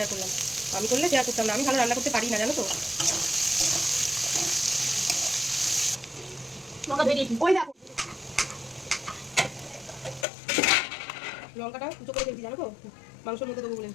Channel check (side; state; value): right; drops out; at 10.2 s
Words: করলাম আমি করলে শেয়ার করতাম না আমি ভালো রান্না করতে পারি না জানো তো লঙ্কাটা কুচো করে ফেলছি জানো তো মাংসের মধ্যে দেবো বলে